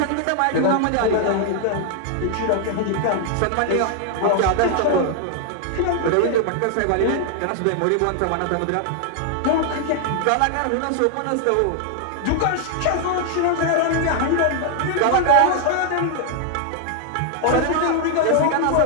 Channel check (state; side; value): different; both; correlation 0.00